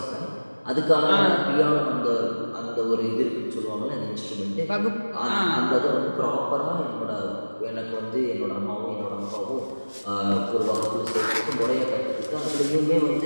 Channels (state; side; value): inverted; both; correlation -1.00